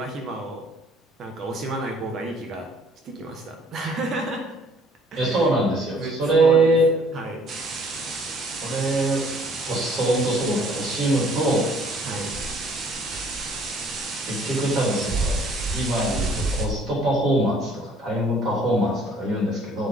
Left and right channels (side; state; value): both; normal; correlation 0.58